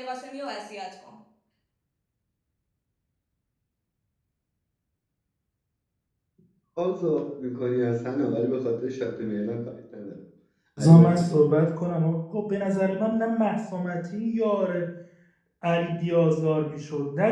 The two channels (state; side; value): identical; both; correlation 1.00